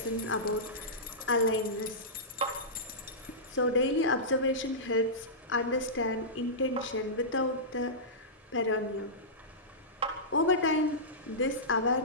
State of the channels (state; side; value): normal; both; correlation -0.17